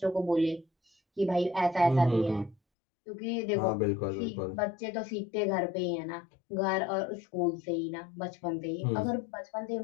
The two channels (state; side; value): drops out; right; at 2.6 s